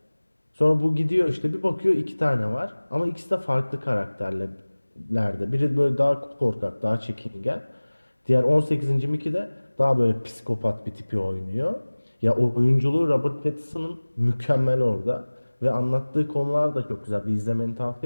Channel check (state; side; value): inverted; both; correlation -1.00